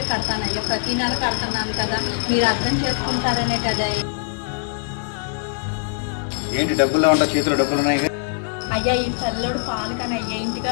కడతానయ్యా. ప్రతి నెల కడుతున్నాను కదా, మీరు అర్థం చేసుకుంటారనే కదా. ఏంటి డబ్బులు ఉంటా, చేతిలో డబ్బులు ఉన్నాయి? అయ్యా ఈ పిల్లడు పాలు కానీ అయ్యా, ఇంటిగా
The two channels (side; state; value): right; silent; 64 dB below the other